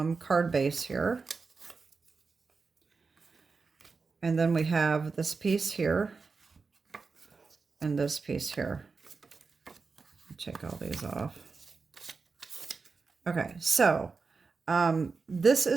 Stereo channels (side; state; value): left; quieter; 4.6 dB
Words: base here. And then we have this piece here and this piece here. Check all these off. Okay, so this